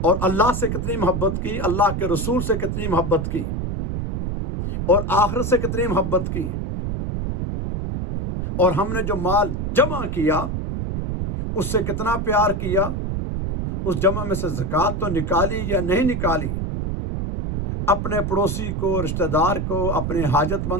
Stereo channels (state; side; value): noise; right; rumble, 2 dB below the sound